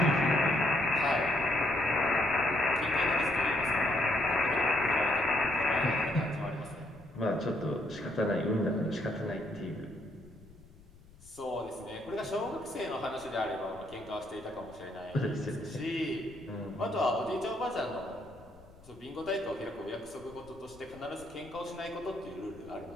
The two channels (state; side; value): noise; left; rumble, 23 dB below the sound